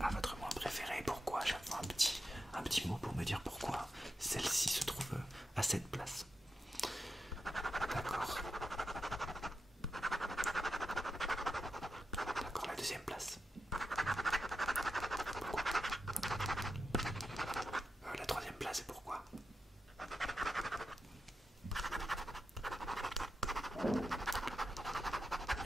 votre moins préféré? Pourquoi? Chaque fois un petit mot pour me dire pourquoi celle-ci se trouve à cette place. D'accord. D'accord, la deuxième place. Pourquoi?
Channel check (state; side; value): normal; both; correlation 0.88